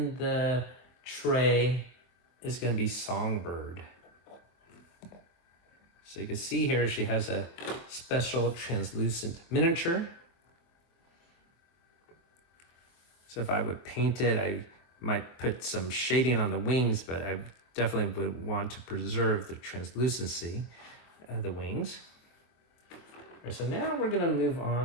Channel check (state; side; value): late; right; 24 ms